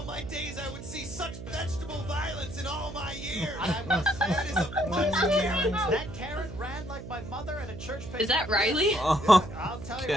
my days I would see such vegetable violence in all my years. I must say, That is a bunch of carrots. that carrot ran like my mother at a church picnic. Is that Riley? Oh, I'll tell you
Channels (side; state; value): right; noise; hum, 11 dB below the sound